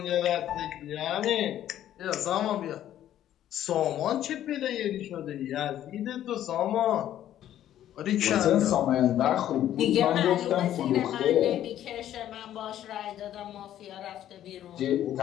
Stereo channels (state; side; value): quieter; right; 11.8 dB